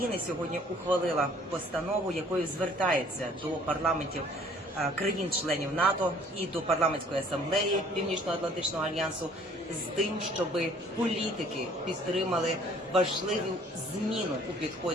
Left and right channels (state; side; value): normal; both; correlation 0.56